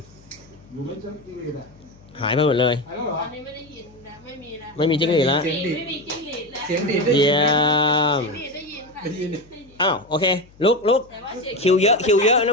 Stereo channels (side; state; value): left; noise; hum, 27 dB below the sound